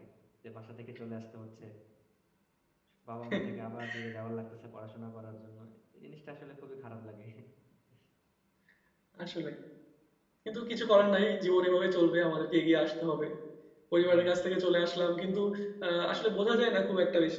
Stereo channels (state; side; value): identical; both; correlation 1.00